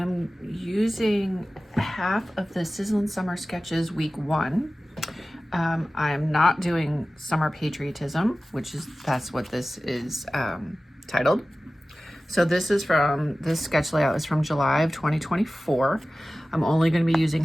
using half of the Sizzlin' Summer Sketches Week 1. I'm not doing Summer Patriotism, that's what this is titled. So this sketch layout is from July of 2024. I'm only going to be using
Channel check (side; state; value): both; normal; correlation 0.96